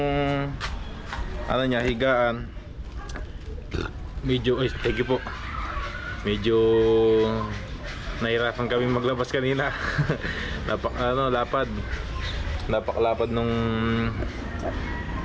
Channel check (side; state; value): both; identical; correlation 1.00